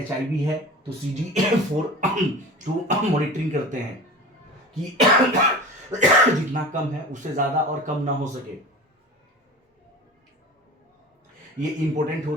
HIV है तो CD4 तो मॉनिटरिंग करते हैं कि जितना कम है उससे ज्यादा और कम ना हो सके। ये इंपॉर्टेंट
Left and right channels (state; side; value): normal; both; correlation 0.35